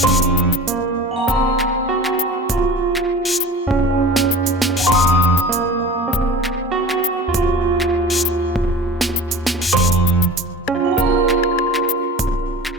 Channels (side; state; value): both; normal; correlation 0.38